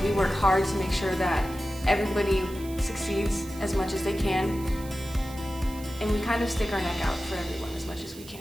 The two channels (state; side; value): noise; right; hiss, 18 dB below the sound